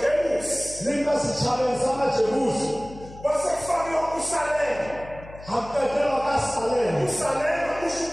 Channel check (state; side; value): noise; left; hum, 17 dB below the sound